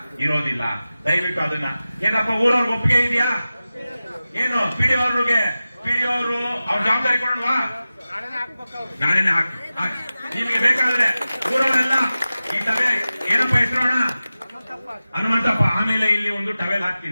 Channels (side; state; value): both; inverted; correlation -0.95